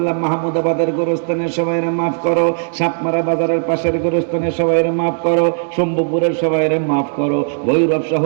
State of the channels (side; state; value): left; silent; digital silence